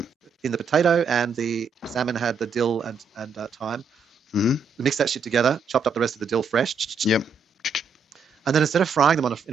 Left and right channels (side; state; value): left; quieter; 4.8 dB